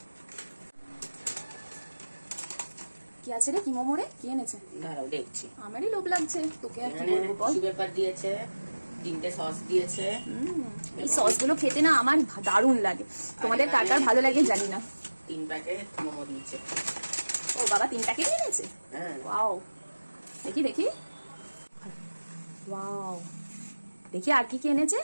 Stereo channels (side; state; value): both; inverted; correlation -1.00